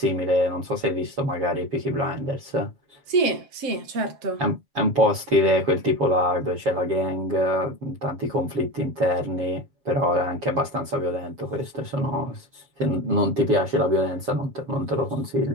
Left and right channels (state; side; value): late; left; 7.4 ms